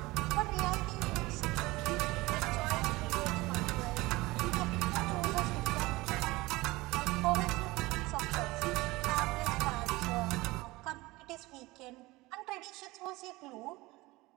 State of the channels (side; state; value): left; quieter; 20.9 dB